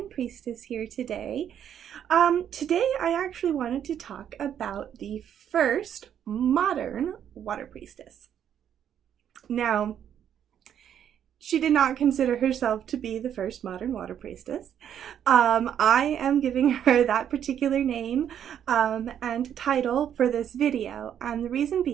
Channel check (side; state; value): left; quieter; 9.4 dB